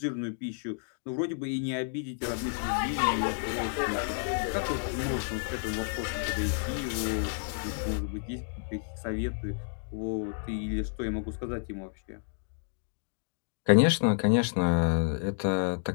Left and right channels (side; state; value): right; silent; digital silence